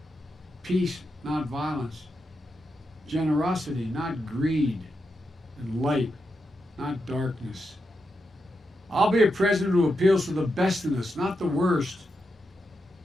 peace, not violence, generosity, not greed, and light, not darkness. I'll be a president who appeals to the best in us, not the worst.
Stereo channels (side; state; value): both; normal; correlation 0.86